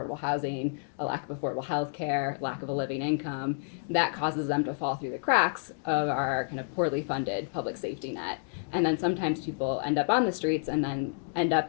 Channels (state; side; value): silent; right; digital silence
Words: housing, a lack of affordable health care, lack of a living income, that causes them to fall through the cracks of our kind of poorly funded public safety net. And then sometimes people end up on the streets and then end